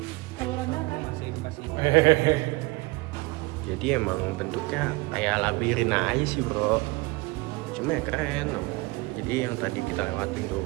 Saluran darah. Jadi emang bentuknya kayak labirin aja sih bro. Cuma ya keren. Jadi yang tadi kita lewatin tuh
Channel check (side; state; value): left; quieter; 23.6 dB